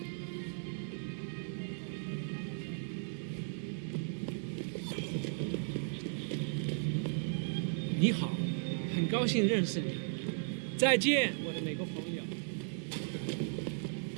你好，很高兴认识你。再见，我的美国朋友。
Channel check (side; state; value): left; silent; digital silence